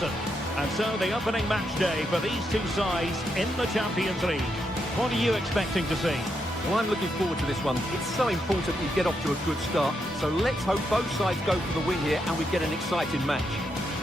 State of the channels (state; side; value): normal; both; correlation 0.81